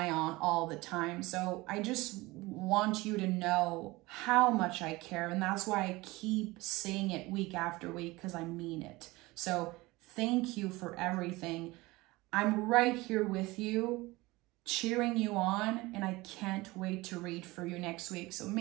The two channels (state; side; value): quieter; left; 21.2 dB